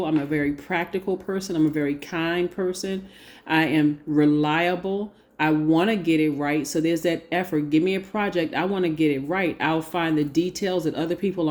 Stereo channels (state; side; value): identical; both; correlation 1.00